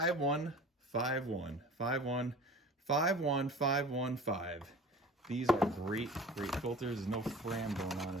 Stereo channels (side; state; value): both; normal; correlation 0.41